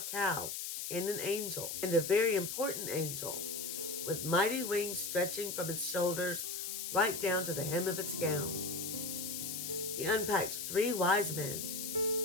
cow and an angel, and a very important angel, with mighty wings stretching from its shoulders right down to the hem of its gown. He unpacked 3 wise men,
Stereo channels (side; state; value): left; noise; hiss, 4 dB below the sound